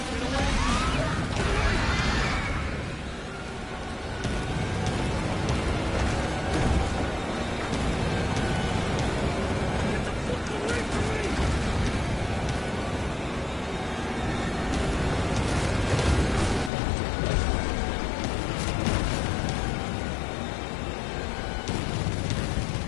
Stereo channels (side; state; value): right; drops out; at 16.7 s